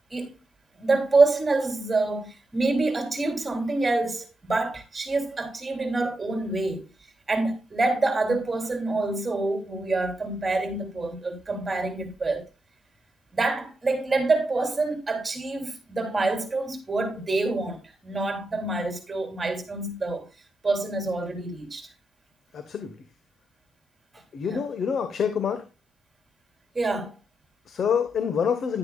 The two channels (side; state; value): both; normal; correlation 0.85